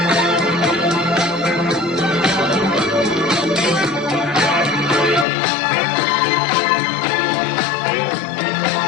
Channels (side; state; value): right; drops out; at 5.2 s